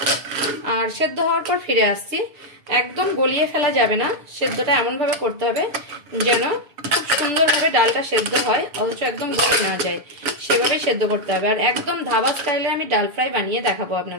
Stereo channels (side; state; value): left; late; 6.8 ms